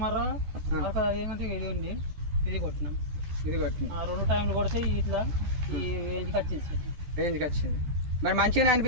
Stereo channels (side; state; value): left; late; 14 ms